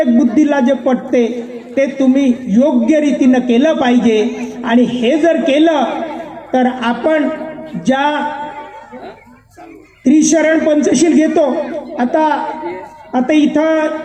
बुद्धीला जे पटते ते तुम्ही योग्य रीतीनं केलं पाहिजे. आणि हे जर केलं तर आपण ज्या त्रिशरण पंचशील घेतो, आता इथं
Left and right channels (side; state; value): both; identical; correlation 1.00